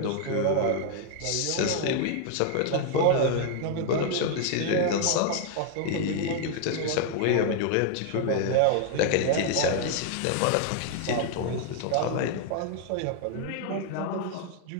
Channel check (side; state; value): both; different; correlation 0.00